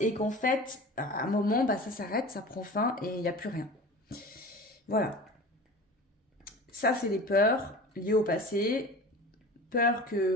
qu'en fait, à un moment, bah, ça s'arrête, ça prend fin, et il n'y a plus rien. Voilà. Ça, c'est des peurs liées au passé. Peur que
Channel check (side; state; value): both; normal; correlation 0.37